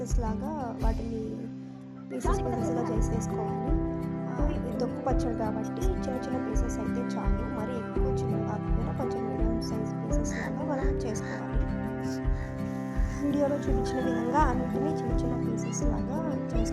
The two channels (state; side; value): identical; both; correlation 1.00